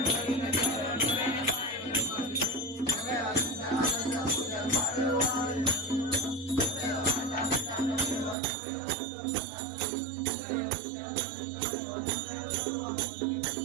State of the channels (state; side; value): drops out; left; at 8.3 s